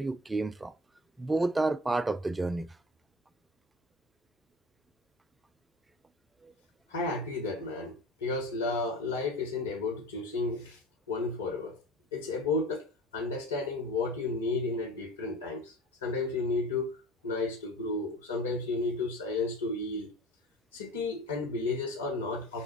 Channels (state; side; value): normal; both; correlation 0.37